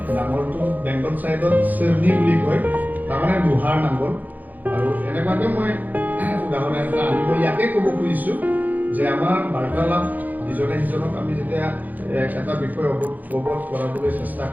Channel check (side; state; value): left; late; 0.082 ms